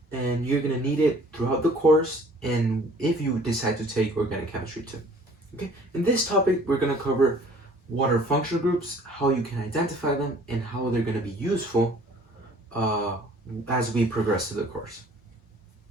and you're going to need it throughout the course and if you decide to take Organic Chemistry 2. Okay, in this topic we're going to cover what are functional groups, how you can identify them, and how they're going to be useful as we progress through the course.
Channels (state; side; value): normal; both; correlation 0.54